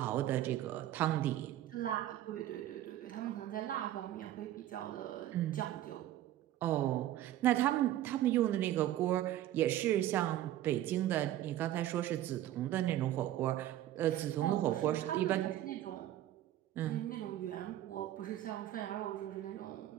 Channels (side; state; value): left; quieter; 13.2 dB